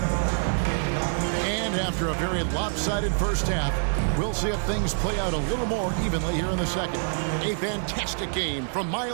After a very lopsided first half, we'll see if things play out a little more evenly here in the second. A fantastic game from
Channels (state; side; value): silent; left; 61 dB below the other